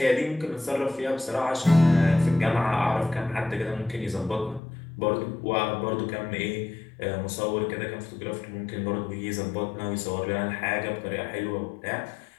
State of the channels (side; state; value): right; drops out; at 4.6 s